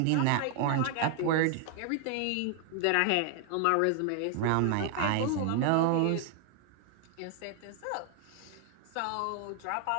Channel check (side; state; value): both; different; correlation 0.00